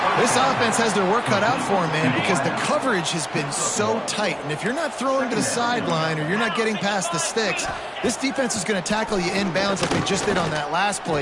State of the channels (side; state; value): both; identical; correlation 1.00